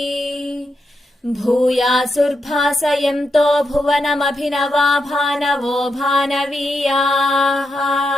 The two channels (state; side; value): normal; both; correlation 0.84